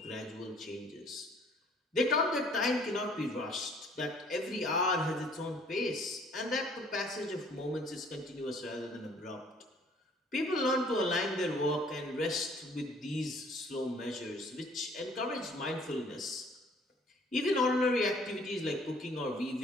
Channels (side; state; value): both; normal; correlation 0.58